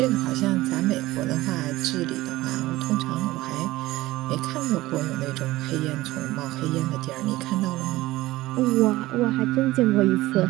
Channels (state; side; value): quieter; left; 17.9 dB